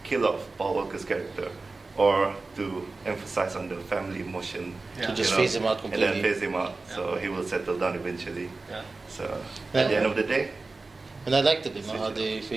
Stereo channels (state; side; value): quieter; left; 3.6 dB